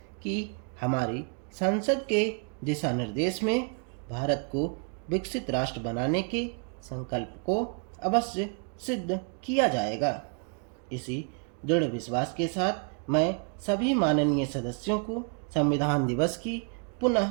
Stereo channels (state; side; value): quieter; left; 39.4 dB